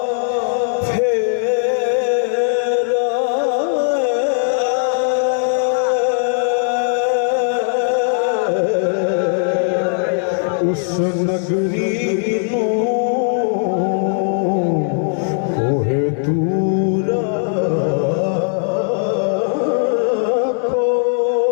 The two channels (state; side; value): silent; right; 67 dB below the other